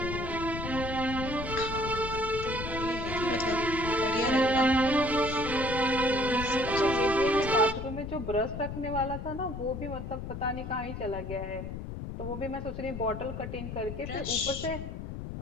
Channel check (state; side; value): noise; left; rumble, 7 dB below the sound